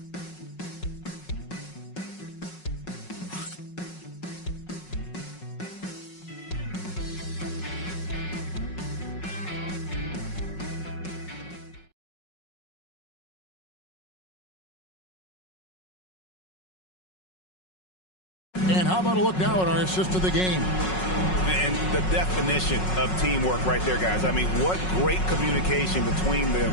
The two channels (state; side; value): late; right; 5.4 ms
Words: And how about a look now at our assist of the game? And the definition of teamwork right there, guys. I mean, what great communication between